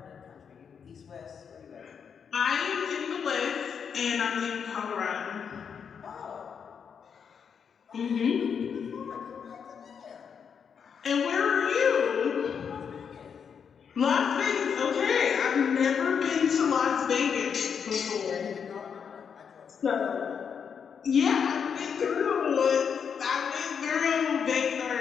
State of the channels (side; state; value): right; quieter; 6.9 dB